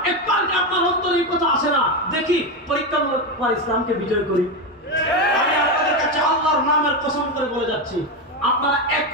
একবার ইসলামকে বিজয় করি। আমি আপনাদের কাছে আল্লাহর নামের কসম করে বলে যাচ্ছি, আপনারা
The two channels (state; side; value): normal; both; correlation 0.12